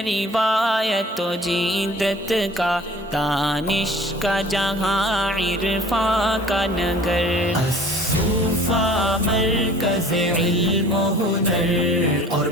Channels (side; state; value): both; normal; correlation 0.48